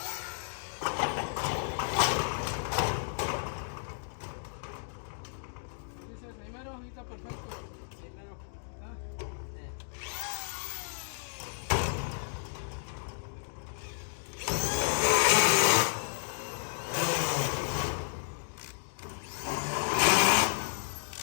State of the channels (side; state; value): right; silent; digital silence